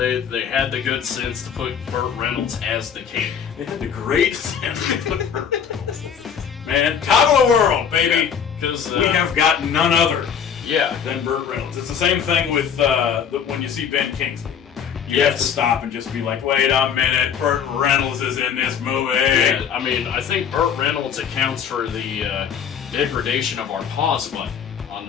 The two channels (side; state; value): right; quieter; 7.7 dB